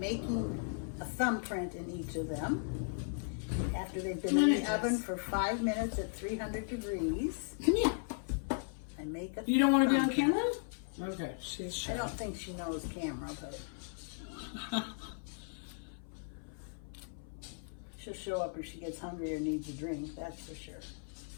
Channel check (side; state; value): right; silent; 53 dB below the other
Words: a thumbprint in each of them. After they've been in the oven for 5 minutes at 300 degrees. Come here. I make a You don't want to be on thumbprint. camera? Okay, she's shy. I don't think she knows camera, but she'll show up if she gets hungry or needs a drink, that's for sure.